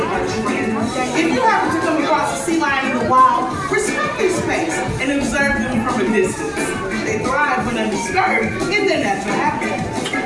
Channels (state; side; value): identical; both; correlation 1.00